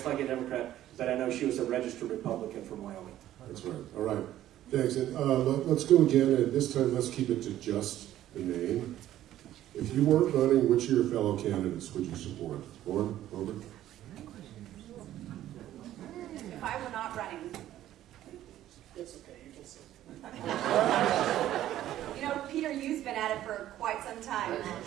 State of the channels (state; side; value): quieter; left; 13.0 dB